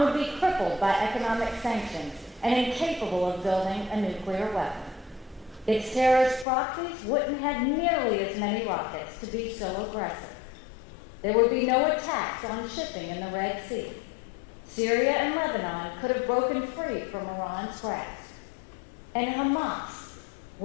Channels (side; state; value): right; drops out; at 6.5 s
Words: be crippled by economic sanctions and incapable of building a nuclear weapon. Its terrorist proxies wouldn't have nearly as many rockets to be so aggressive. There would be no attacks on shipping in the Red Sea. Syria and Lebanon could have broken free from Iran's grasp. And Hamas